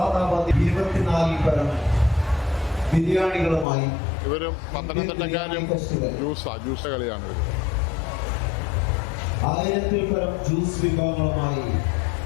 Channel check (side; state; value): right; drops out; at 3.7 s